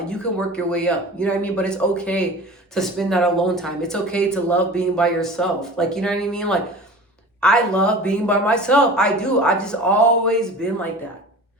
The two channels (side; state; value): both; normal; correlation 0.38